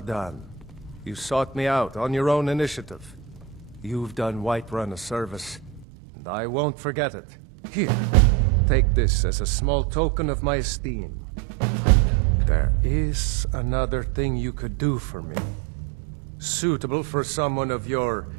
done. You sought me out on your own initiative. You've done Whiterun a service, and I won't forget it. Here, take this as a small token of my esteem. There is another thing you could do for me. Suitable for someone of your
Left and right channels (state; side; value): drops out; left; at 5.9 s